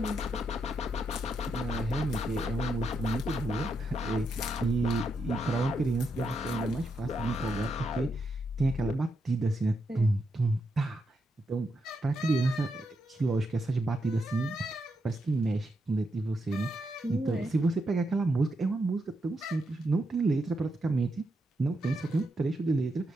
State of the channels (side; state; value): both; normal; correlation 0.82